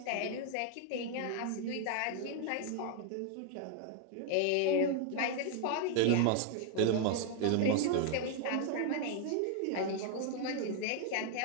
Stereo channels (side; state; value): both; different; correlation 0.00